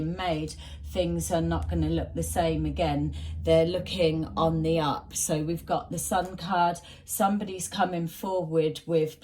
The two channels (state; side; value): identical; both; correlation 1.00